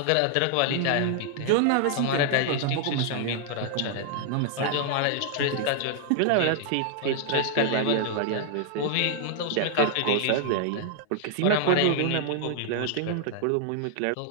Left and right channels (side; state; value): both; different; correlation 0.00